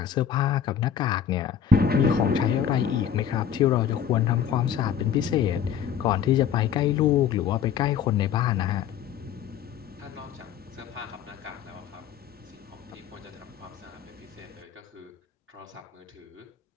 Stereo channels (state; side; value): quieter; right; 8.5 dB